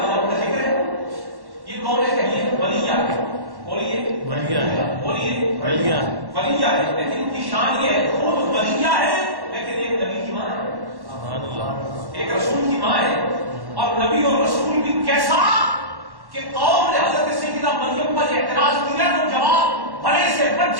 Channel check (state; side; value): late; left; 1.1 ms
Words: بجا کا ذکر ہے. یہ کون ہے؟ کہیے ولیہ ہے. بولیے ولیہ ہے، بولیے ولیہ ہے. لیکن ان کی شان یہ ہے خود ولیہ ہے لیکن ایک نبی کی ماں ہے، ایک رسول کی ماں ہے. اور نبی اور رسول بھی کیسا کہ قوم نے حضرت سیدنا مریم پر اعتراض کیا تو جواب بڑے سے